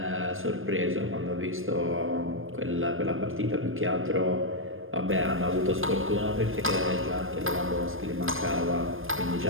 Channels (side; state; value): left; late; 0.59 ms